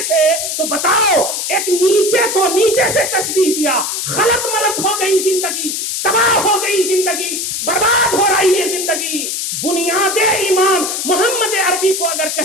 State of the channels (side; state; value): left; noise; hiss, 3 dB below the sound